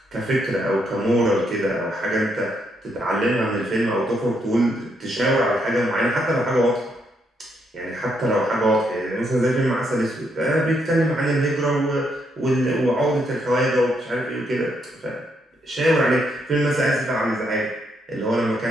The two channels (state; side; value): normal; both; correlation 0.76